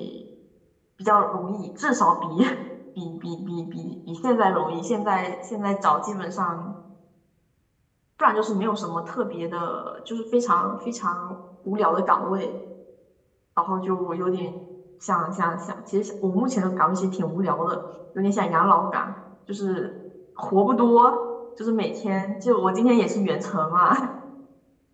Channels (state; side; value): identical; both; correlation 1.00